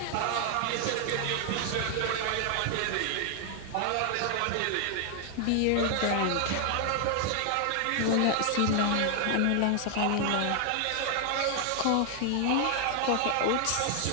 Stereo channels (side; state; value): both; different; correlation 0.00